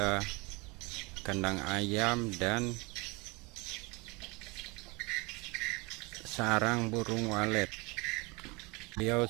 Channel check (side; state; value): left; quieter; 27.0 dB